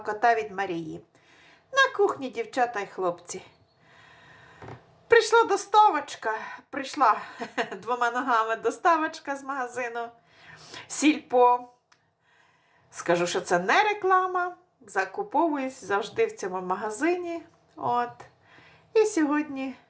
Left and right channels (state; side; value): identical; both; correlation 1.00